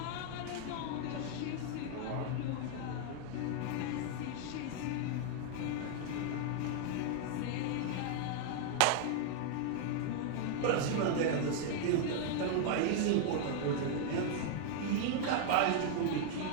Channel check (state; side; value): different; both; correlation 0.00